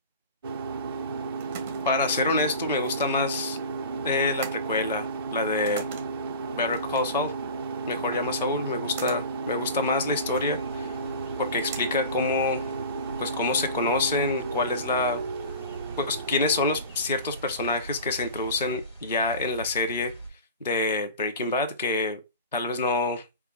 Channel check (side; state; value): both; inverted; correlation -0.35